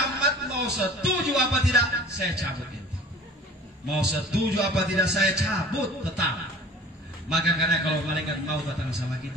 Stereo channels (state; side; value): normal; both; correlation 0.45